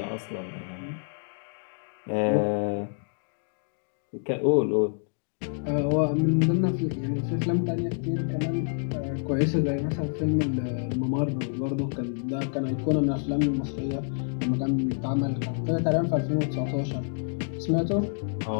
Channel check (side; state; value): right; silent; 60 dB below the other